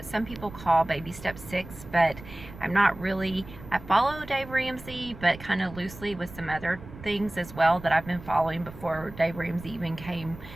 some people call baby step 6, but I'm not really. I follow Dave Ramsey, but kind of loosely with some other things as well that I've been following before Dave Ramsey even came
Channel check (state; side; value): noise; right; rumble, 16 dB below the sound